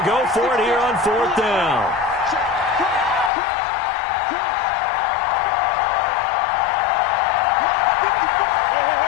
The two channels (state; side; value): drops out; right; at 3.3 s